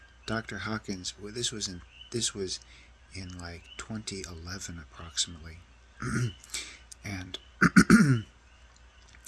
Dr. Hawkins, well, this was in like 2011 approximately, and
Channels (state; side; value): identical; both; correlation 1.00